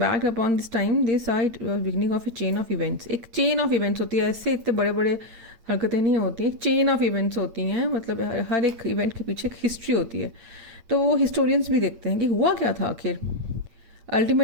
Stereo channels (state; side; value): late; left; 8.8 ms